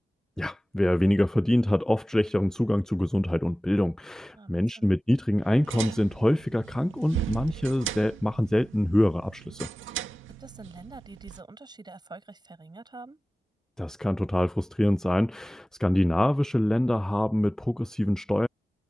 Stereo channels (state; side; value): normal; both; correlation 0.98